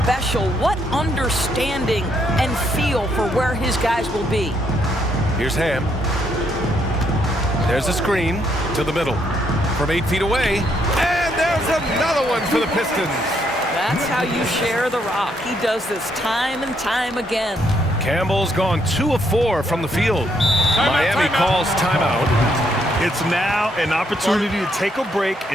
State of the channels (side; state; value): both; normal; correlation 0.73